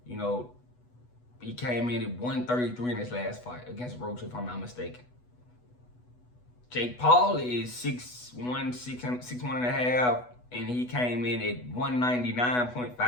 He came in at 133 in his last fight against Roach, if I'm not mistaken. Jake Paul is 6'1", 6'1" and a half, and he came in at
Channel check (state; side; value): late; right; 8.1 ms